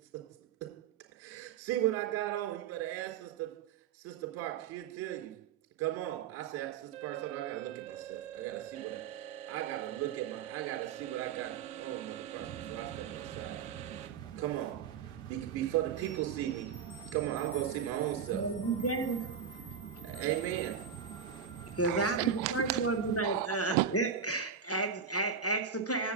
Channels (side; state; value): left; quieter; 6.9 dB